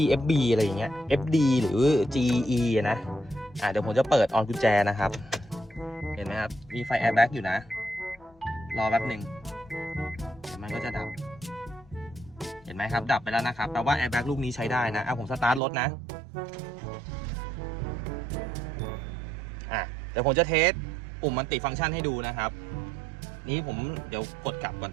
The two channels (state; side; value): drops out; left; at 15.6 s